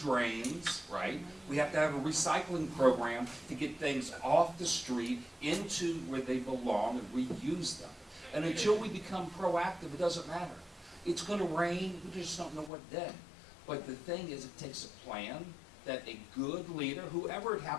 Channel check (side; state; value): right; drops out; at 12.7 s